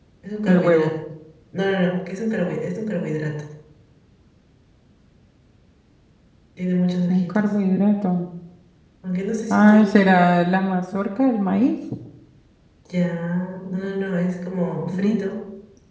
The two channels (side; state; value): both; identical; correlation 1.00